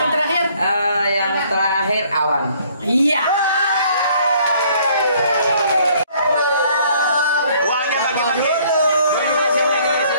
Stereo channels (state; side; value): inverted; both; correlation -0.60